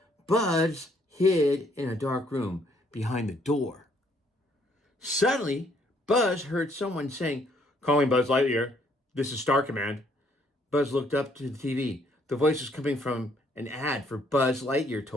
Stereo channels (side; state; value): both; normal; correlation 0.67